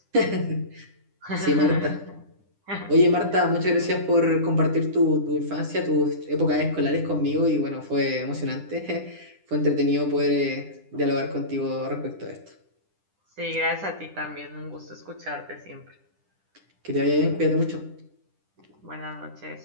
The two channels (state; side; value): late; left; 10 ms